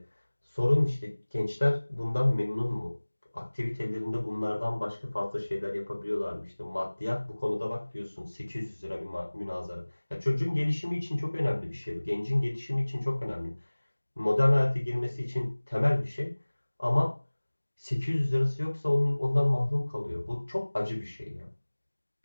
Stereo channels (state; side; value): inverted; both; correlation -1.00